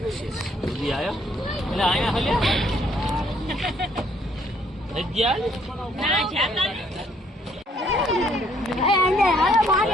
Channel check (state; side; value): normal; both; correlation 0.66